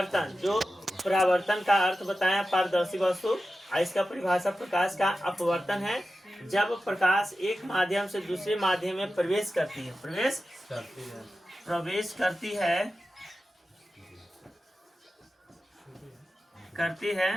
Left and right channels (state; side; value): normal; both; correlation 0.93